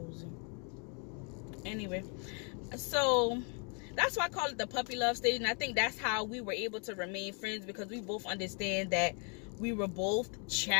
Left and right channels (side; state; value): right; quieter; 38.4 dB